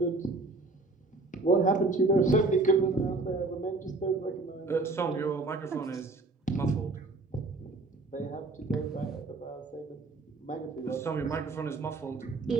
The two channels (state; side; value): quieter; left; 3.3 dB